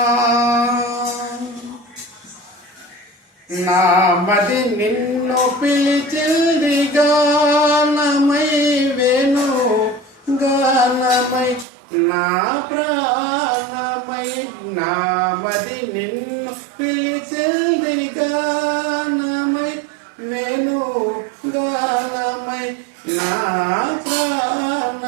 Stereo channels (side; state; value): left; drops out; at 11.7 s